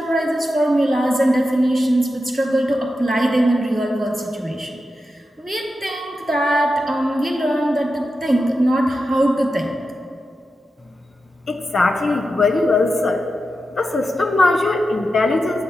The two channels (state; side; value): normal; both; correlation 0.90